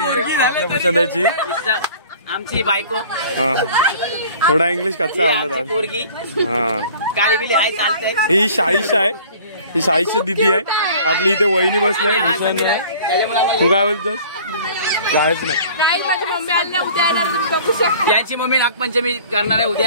भूषणाची, आमची बायको. थोडा इंग्लिश कच्चा आवडत आज. पोरगी हा, काय बिली हाय चालतंय. ही शाईशा आहे, ही शाईची दिदी आहे आपली. इथे वहिनी बसलाय भूषण. तू काय बोलतोस? जायच नाही. गाईज माझी मम्मी आली ना, उद्या येणार, तुम्ही बघू शकता. यांची मम्मी नागपंचमी करणार आहे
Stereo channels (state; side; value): inverted; both; correlation -0.48